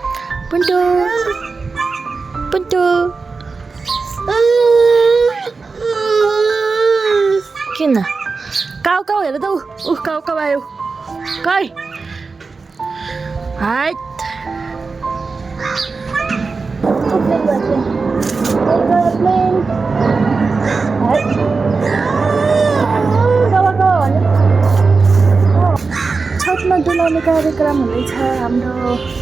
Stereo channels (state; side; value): quieter; left; 4.3 dB